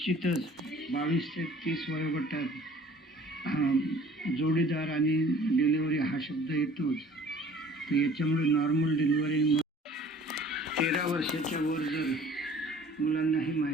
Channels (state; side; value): normal; both; correlation 0.50